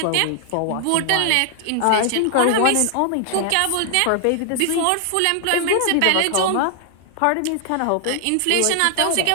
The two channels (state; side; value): different; both; correlation 0.00